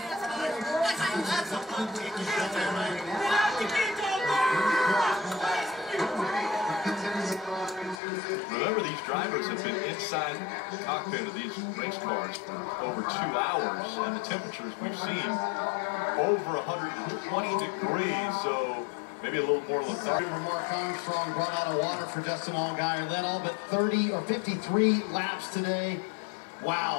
Remember, these drivers have been inside the cockpit of these race cars for over 2 hours, and the temperatures we've seen over 120 degrees, so maybe a little more lethargic. Mark Armstrong brought out a water for Justin Allgaier. Led all but 53 laps today.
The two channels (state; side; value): drops out; right; at 8.0 s